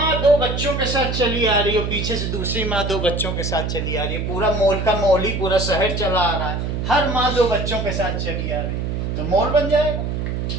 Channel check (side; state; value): right; noise; hum, 2 dB below the sound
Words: बच्चों के साथ चली आ रही हो, पीछे से दूसरी माँ 2 बच्चों के साथ चली आ रही है, पूरा मोल का मोल ही पूरा शहर चला आ रहा है, हर माँ 2 बच्चों के साथ चली आ रही है, तो मोल बन जाएगा।